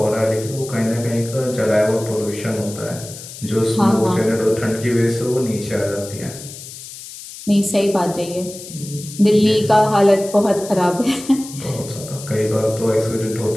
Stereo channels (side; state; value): left; noise; hiss, 14 dB below the sound